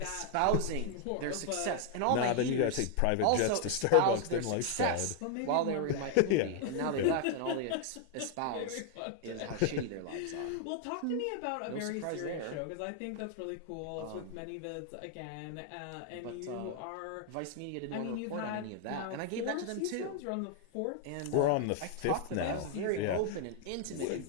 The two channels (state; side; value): different; both; correlation 0.00